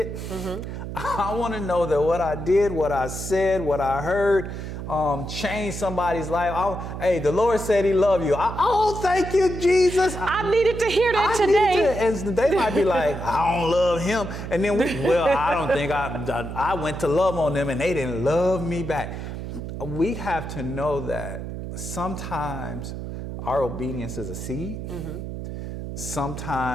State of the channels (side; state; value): right; noise; hum, 7 dB below the sound